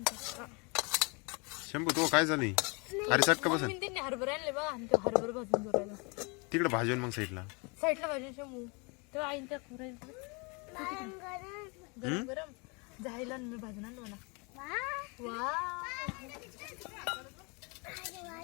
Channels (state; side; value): quieter; right; 30.8 dB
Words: शंभू तो काय झाली? अरे चटका बसन त्यांनी हरभरे आणले बघा आणि ते हरभरे भाजून जोरायला तिकडे भाजून मग साईडला भाजून शंभू तेव्हा आईन त्या गरम गरम जायला मी भाजून आणलो ना. वा